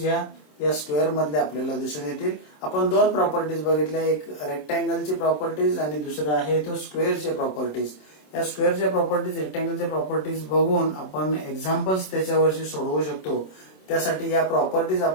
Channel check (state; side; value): late; right; 27 ms